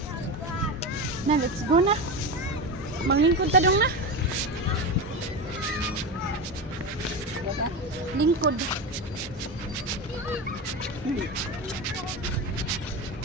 Na, let's go na. Manglingkod ta dong na. Lingkod.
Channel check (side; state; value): both; normal; correlation 0.20